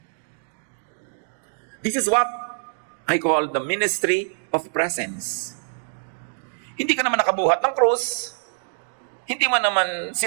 This is what I call the ministry of presence. Hindi ka naman nakabuhat ng krus, hindi mo naman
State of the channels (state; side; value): silent; left; digital silence